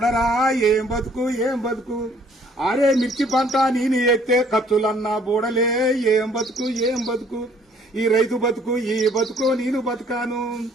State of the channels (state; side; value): normal; both; correlation 0.60